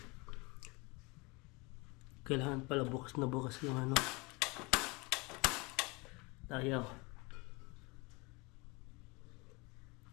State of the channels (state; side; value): quieter; right; 27.0 dB